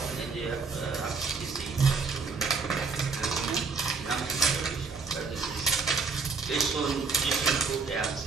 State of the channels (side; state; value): left; quieter; 4.6 dB